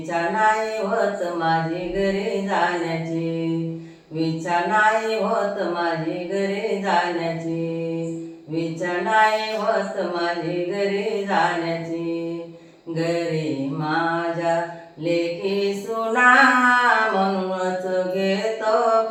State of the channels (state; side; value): identical; both; correlation 1.00